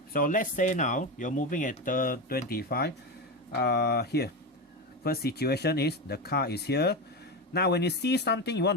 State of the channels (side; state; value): both; normal; correlation 0.18